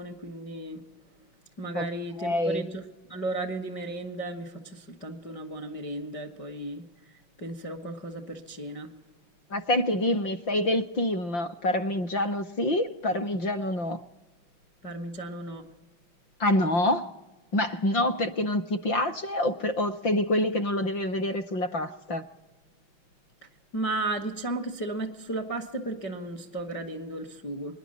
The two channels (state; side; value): late; right; 5.8 ms